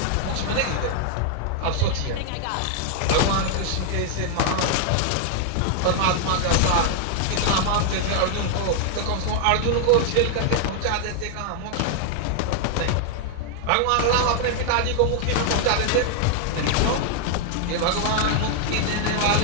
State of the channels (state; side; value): different; both; correlation 0.00